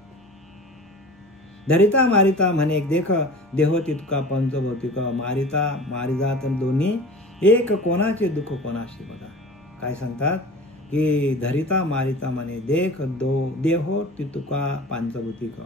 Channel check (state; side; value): normal; both; correlation 0.39